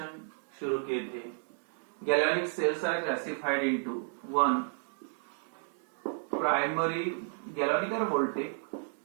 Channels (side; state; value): left; silent; 56 dB below the other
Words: शुरू किए थे। Galvanic cells are classified into one primary galvanic और वोल्टेक,